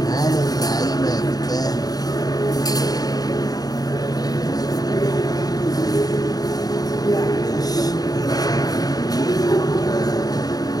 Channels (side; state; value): right; late; 0.18 ms